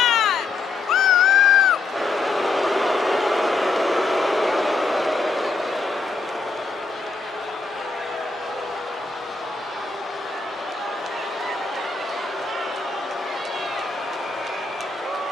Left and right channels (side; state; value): right; quieter; 3.9 dB